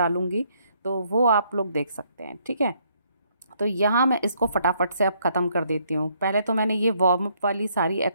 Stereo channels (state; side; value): inverted; both; correlation -0.69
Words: तो वो आप लोग देख सकते हैं, ठीक है। तो यहाँ मैं इसको फटाफट से अब ख़त्म कर देती हूँ। पहले तो मैंने ये वार्म अप वाली सारी